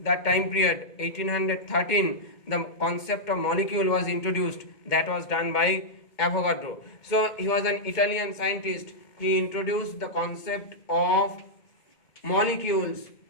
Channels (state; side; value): late; right; 2.1 ms